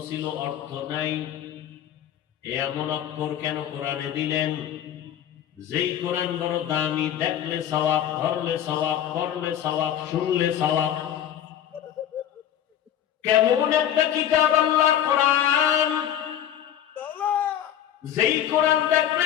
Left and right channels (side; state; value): right; quieter; 10.6 dB